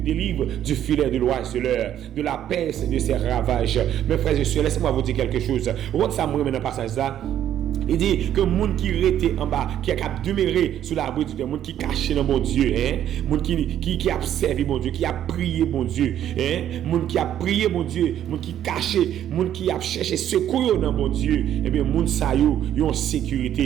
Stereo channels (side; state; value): left; quieter; 10.9 dB